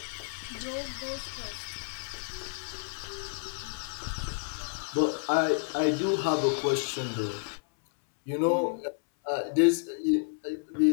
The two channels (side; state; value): right; silent; 58 dB below the other